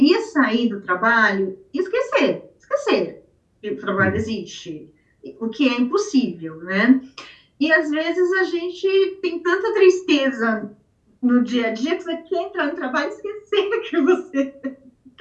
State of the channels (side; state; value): both; identical; correlation 1.00